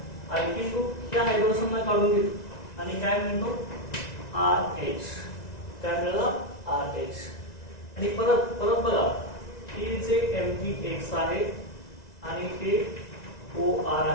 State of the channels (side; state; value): right; late; 1.9 ms